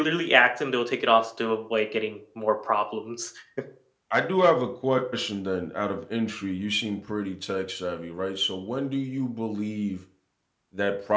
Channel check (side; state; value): both; identical; correlation 1.00